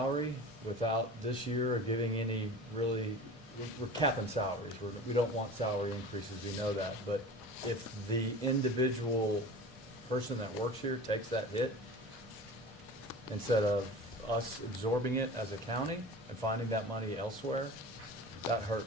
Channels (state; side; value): normal; both; correlation 0.36